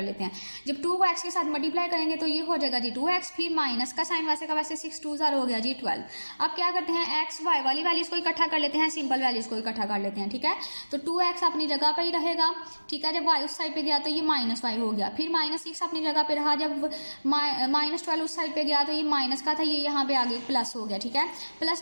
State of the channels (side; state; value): both; inverted; correlation -1.00